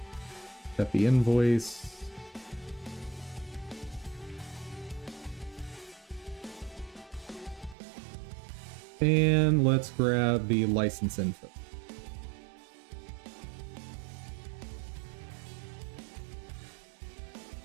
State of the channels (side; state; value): left; drops out; at 7.8 s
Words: Got the invoice. And let's grab the license info.